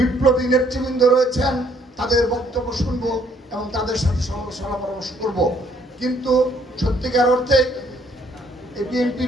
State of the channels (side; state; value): both; normal; correlation 0.65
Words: নেতৃবৃন্দ রয়েছেন তাদের বক্তব্য শুনব এবং তাদের সাথে সলা পরামর্শ করব। কিন্তু সত্যিকার অর্থে এই